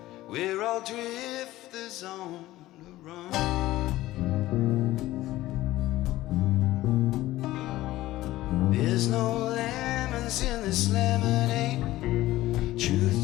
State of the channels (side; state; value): right; quieter; 16.4 dB